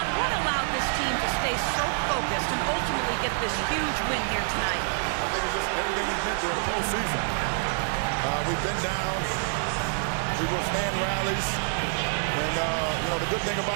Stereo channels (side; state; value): left; silent; 59 dB below the other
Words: what allowed this team to stay so focused and ultimately get this huge win here tonight? I think it's just everything we've been through in the postseason. We've been down. We withstand rallies. And, the good thing